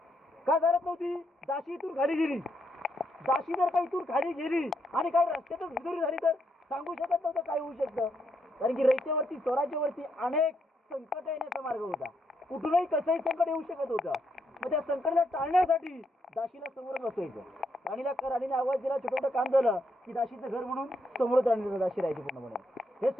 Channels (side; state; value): both; normal; correlation 0.77